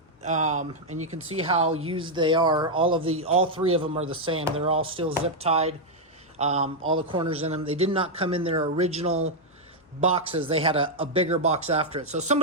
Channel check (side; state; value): both; normal; correlation -0.02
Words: and you can see how used they are. All 3 of them are the same. They're all still zip tied, all the corners in them. They did not come in their original boxes. They had a bigger box after it. So